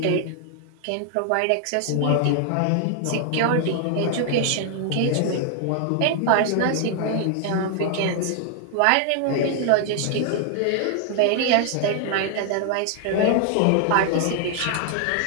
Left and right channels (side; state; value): both; different; correlation 0.00